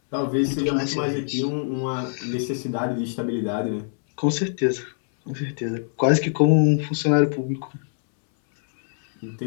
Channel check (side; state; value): right; silent; 63 dB below the other